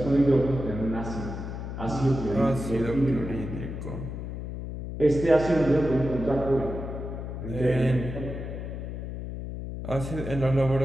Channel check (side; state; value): left; noise; hum, 7 dB below the sound